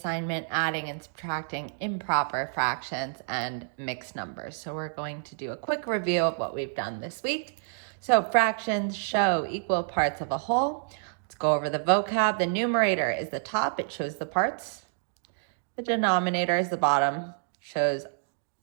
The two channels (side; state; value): left; silent; digital silence